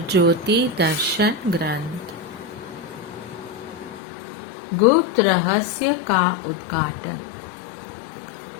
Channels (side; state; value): right; drops out; at 4.0 s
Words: ज्योति दर्शन ग्रंथ गुप्त रहस्य का उद्घाटन।